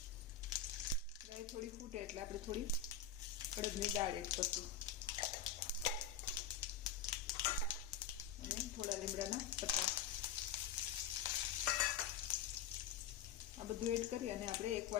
રાઈ થોડી ફૂટે એટલે આપણે થોડી અડદની દાળ એડ કરશું અને થોડા લીમડાના પત્તા. આ બધું એડ કરી અને આપણે 1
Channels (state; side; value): quieter; right; 7.9 dB